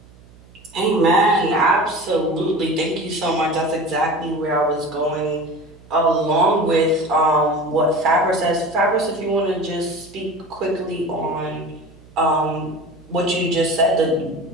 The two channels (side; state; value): right; noise; hum, 25 dB below the sound